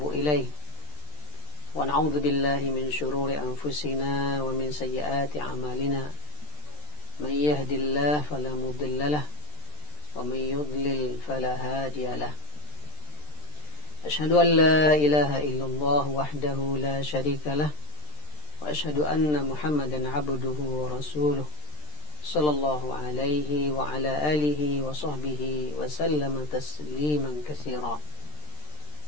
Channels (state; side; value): late; right; 13 ms